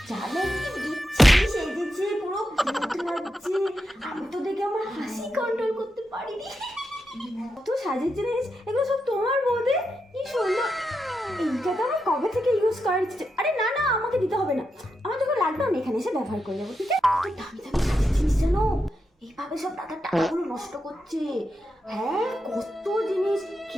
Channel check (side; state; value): both; normal; correlation 0.86